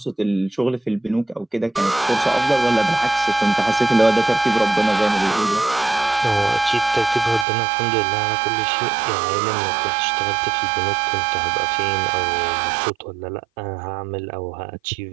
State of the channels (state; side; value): drops out; left; at 7.5 s